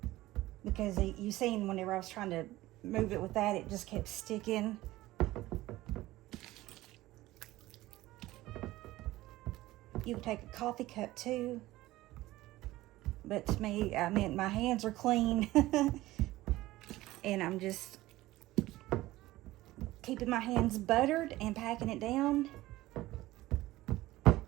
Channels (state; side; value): quieter; left; 17.2 dB